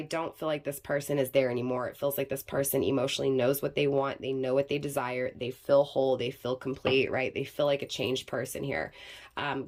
don't feel like this person is there anymore. It feels like this person emotionally knows what they want. They know what they desire. They feel whole. They feel complete, right? They feel like a changed person here.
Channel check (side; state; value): both; identical; correlation 1.00